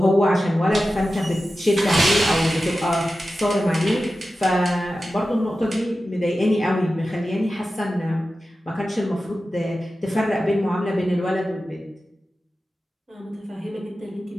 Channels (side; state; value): both; normal; correlation 0.93